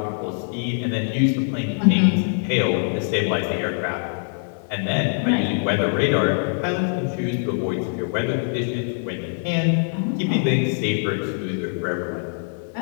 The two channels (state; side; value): silent; right; 63 dB below the other